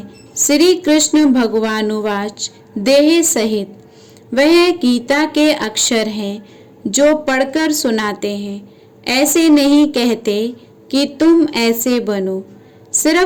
श्री कृष्ण भगवानुवाच देह सहित। वह गीता के अक्षर हैं जो पढ़कर सुनाते हैं। ऐसे नहीं कहते कि तुम ऐसे बनो,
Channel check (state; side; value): identical; both; correlation 1.00